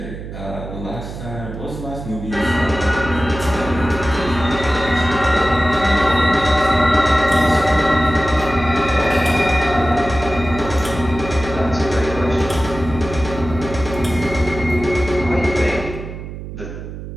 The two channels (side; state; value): right; noise; hum, 10 dB below the sound